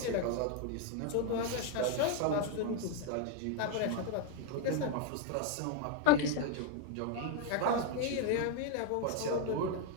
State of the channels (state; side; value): different; both; correlation 0.01